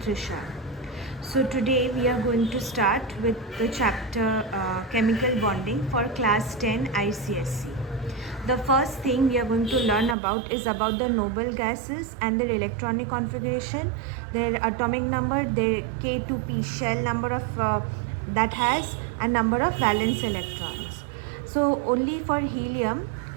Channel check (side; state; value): left; drops out; at 10.2 s